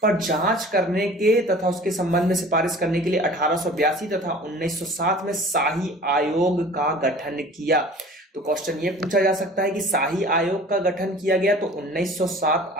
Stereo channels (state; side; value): normal; both; correlation 0.44